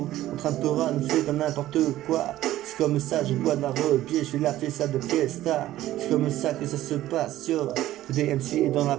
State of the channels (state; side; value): quieter; left; 14.5 dB